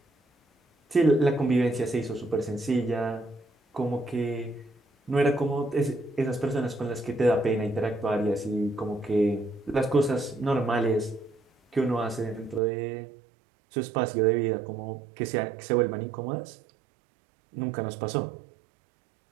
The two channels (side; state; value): left; drops out; at 12.6 s